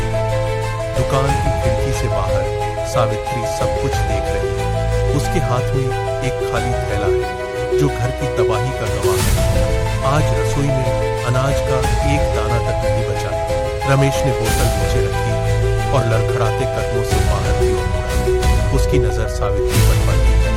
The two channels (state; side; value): identical; both; correlation 1.00